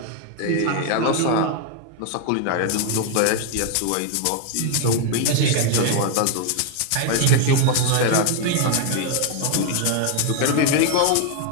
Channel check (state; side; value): different; both; correlation 0.00